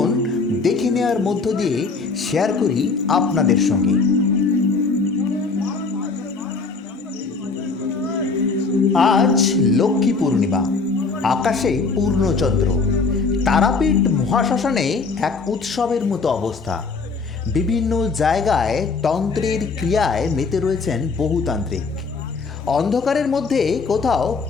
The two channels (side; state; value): right; quieter; 4.4 dB